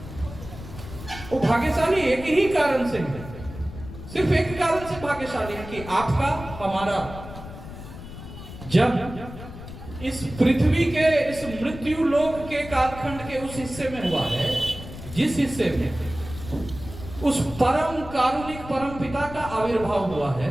वो भाग्यशाली एक ही कारण से है, सिर्फ एक कारण से भाग्यशाली है कि आपका, हमारा जब इस पृथ्वी के, इस मृत्यु लोक के कालखंड के उस हिस्से में हुआ है, जिस हिस्से में उस परम कारुणिक परम पिता का आविर्भाव हुआ है,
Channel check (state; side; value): noise; left; rumble, 13 dB below the sound